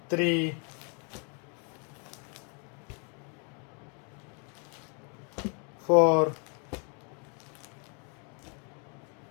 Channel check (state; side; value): quieter; right; 37.5 dB